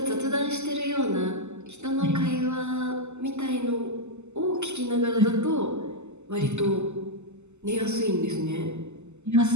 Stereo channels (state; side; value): late; left; 0.83 ms